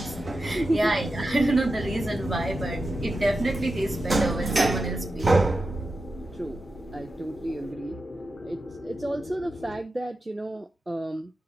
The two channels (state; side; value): normal; both; correlation 0.90